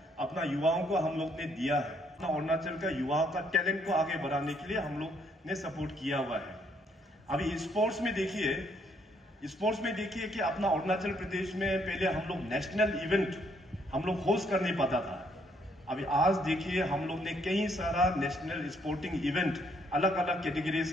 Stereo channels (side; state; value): both; normal; correlation 0.70